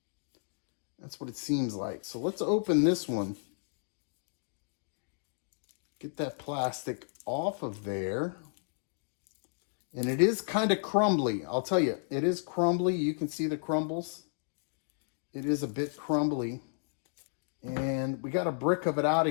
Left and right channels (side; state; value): right; silent; digital silence